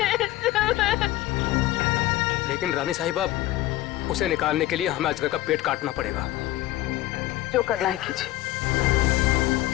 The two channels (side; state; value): right; quieter; 15.9 dB